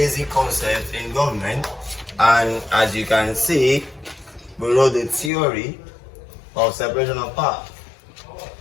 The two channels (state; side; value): drops out; right; at 5.3 s